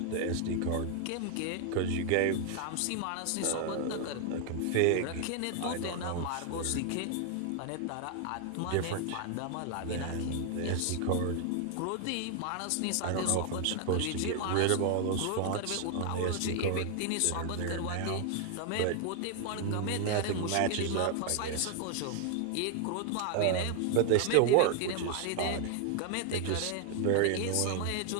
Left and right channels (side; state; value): both; different; correlation 0.00